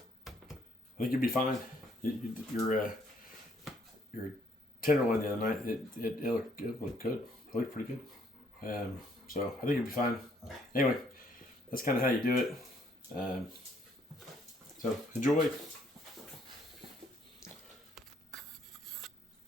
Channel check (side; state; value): both; normal; correlation 0.67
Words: think you'll be fine. Your tenderloin the other night, it looked good. It looked pretty good. So I think you'll be fine. Anyway, that's kind of how you do it. So enjoy.